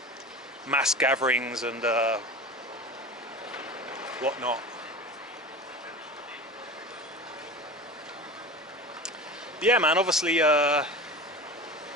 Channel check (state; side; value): normal; both; correlation 0.32